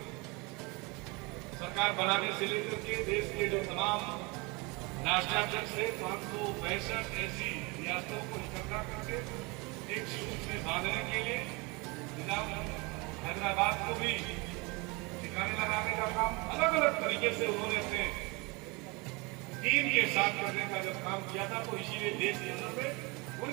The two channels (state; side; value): quieter; left; 27.3 dB